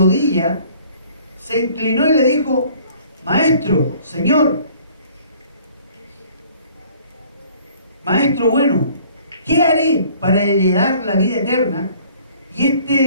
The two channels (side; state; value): both; inverted; correlation -0.55